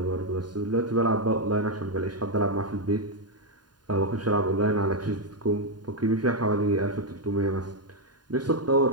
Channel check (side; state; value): left; late; 0.70 ms